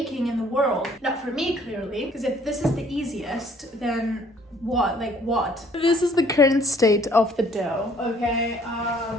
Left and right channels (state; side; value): normal; both; correlation 0.59